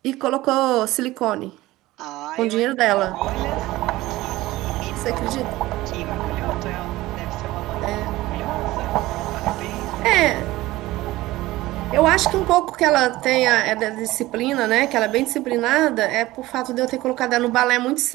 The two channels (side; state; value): left; quieter; 17.9 dB